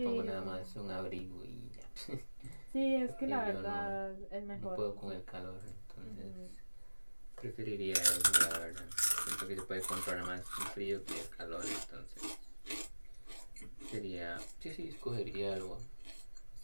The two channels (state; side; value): inverted; both; correlation -1.00